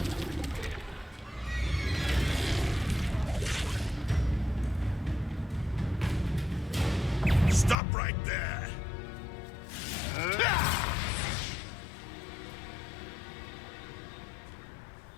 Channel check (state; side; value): drops out; right; at 7.8 s